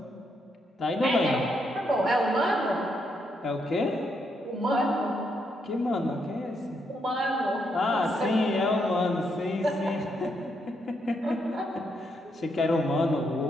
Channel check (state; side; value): normal; both; correlation 0.78